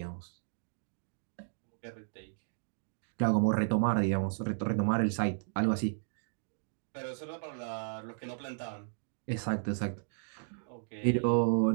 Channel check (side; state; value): left; silent; digital silence